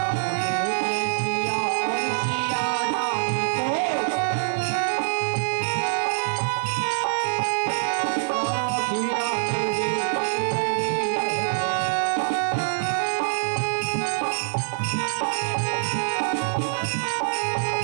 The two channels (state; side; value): silent; left; digital silence